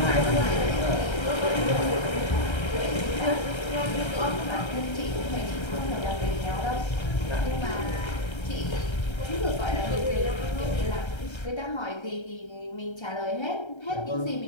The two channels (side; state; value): right; late; 1.3 ms